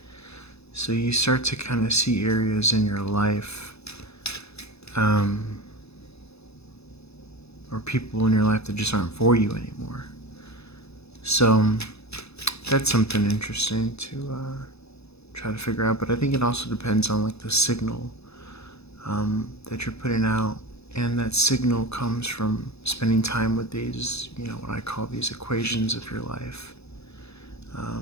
So you start to kind of see areas in your life or people in your life that just aren't for you anymore. So that's something interesting to try to figure out. But I think it also depends on like the signal that you're putting out, and that signal comes from spending time with these, what I call these equations of your life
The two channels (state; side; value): late; right; 0.79 ms